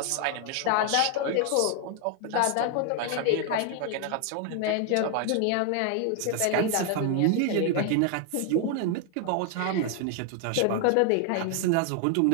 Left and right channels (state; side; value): different; both; correlation 0.00